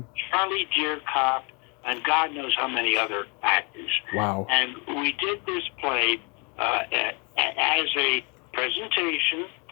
Deercop, and God knows how many other actors. Wow. And we did this play as a presentation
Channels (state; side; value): quieter; right; 32.4 dB